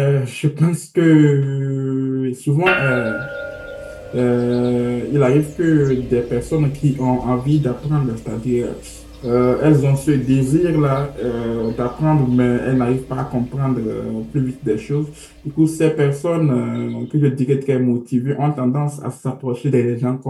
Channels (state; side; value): identical; both; correlation 1.00